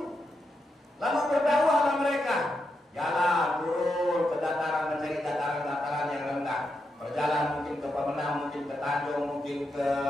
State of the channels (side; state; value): both; normal; correlation 0.84